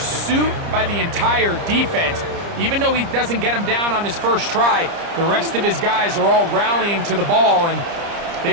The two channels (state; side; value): late; left; 30 ms